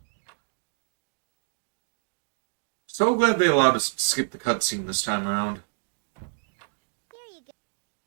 So glad they allowed us to skip the cutscene this time around. Here you go.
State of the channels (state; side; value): silent; left; digital silence